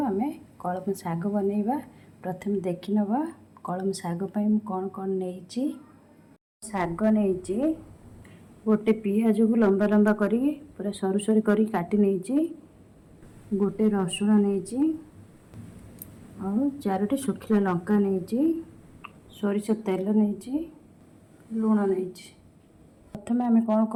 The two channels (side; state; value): both; identical; correlation 1.00